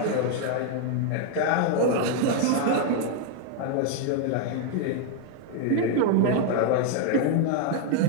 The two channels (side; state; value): both; different; correlation 0.00